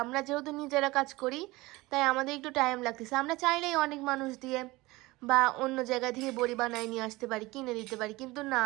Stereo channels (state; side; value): quieter; left; 20.9 dB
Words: আমরা যেহেতু নিজেরা কাজ করি তাই আমাদের একটু টাইম লাগতেছে। আমরা চাইলেই অনেক মানুষ দিয়ে বা অন্য জায়গা থেকে বড়ি বানায় নিয়ে আসতে পারি, কিনে দিতে পারি, কিন্তু না,